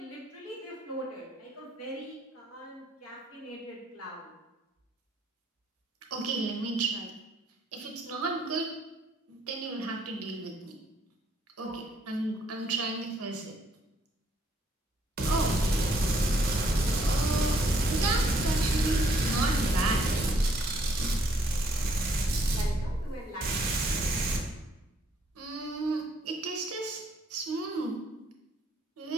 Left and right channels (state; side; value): normal; both; correlation 0.67